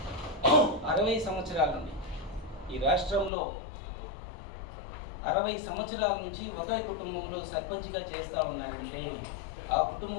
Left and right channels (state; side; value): drops out; right; at 3.3 s